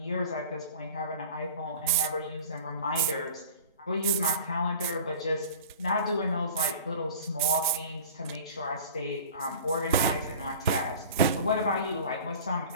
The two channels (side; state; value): both; inverted; correlation -0.41